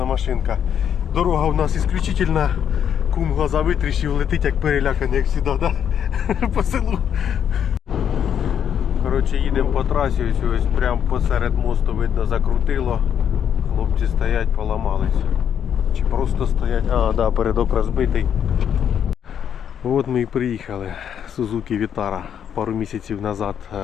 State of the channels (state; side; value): quieter; right; 8.7 dB